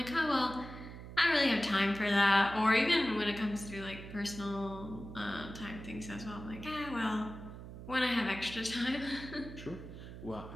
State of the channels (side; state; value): right; noise; hum, 12 dB below the sound